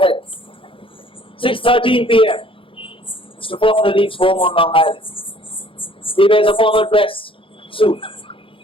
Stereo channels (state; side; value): late; right; 0.26 ms